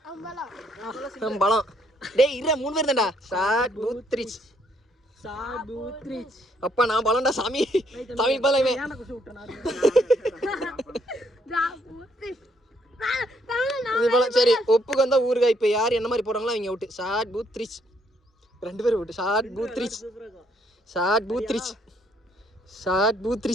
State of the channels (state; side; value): normal; both; correlation 0.70